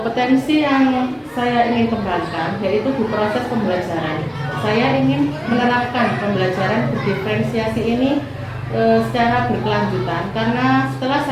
yang saya ingin kembangkan yaitu di proses pembelajaran. Saya ingin menerapkan pembelajaran berdiferensiasi ini secara berkelanjutan, karena setelah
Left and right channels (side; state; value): both; identical; correlation 1.00